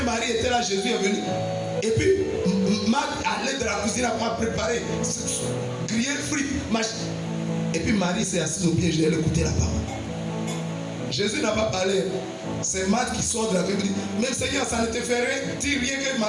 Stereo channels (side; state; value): both; identical; correlation 1.00